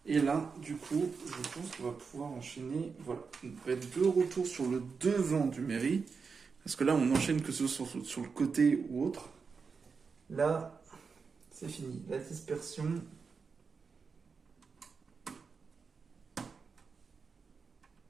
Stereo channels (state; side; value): quieter; left; 5.2 dB